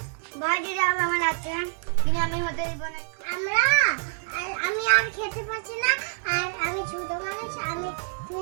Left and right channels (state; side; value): silent; left; 60 dB below the other